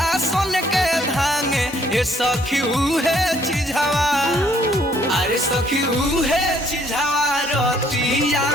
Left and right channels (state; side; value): normal; both; correlation 0.65